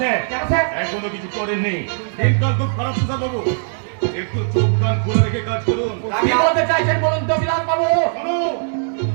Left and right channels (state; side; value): silent; left; digital silence